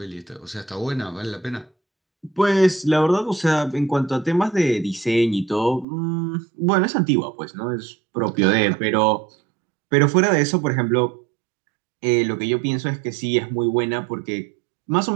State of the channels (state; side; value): drops out; left; at 5.9 s